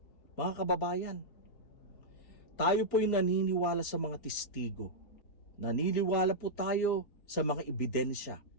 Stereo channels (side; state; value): right; late; 4.9 ms